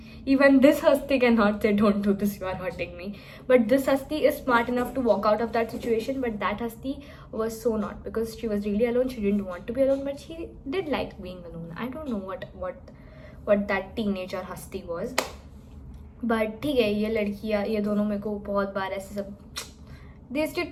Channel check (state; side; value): identical; both; correlation 1.00